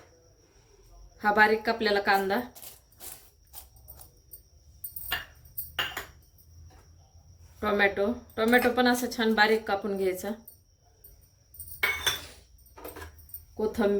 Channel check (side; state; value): both; identical; correlation 1.00